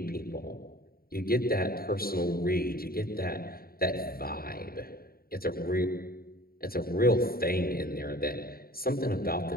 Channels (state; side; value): late; right; 0.43 ms